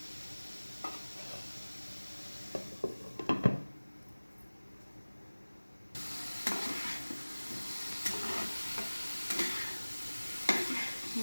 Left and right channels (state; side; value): inverted; both; correlation -1.00